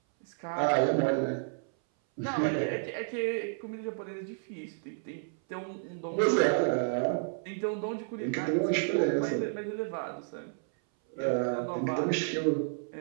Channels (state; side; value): silent; left; 57 dB below the other